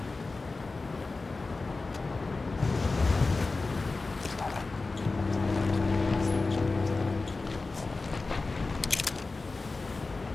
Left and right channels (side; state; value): right; quieter; 3.7 dB